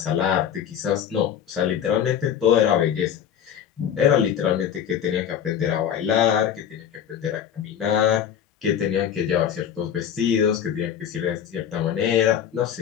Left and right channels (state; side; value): quieter; right; 9.1 dB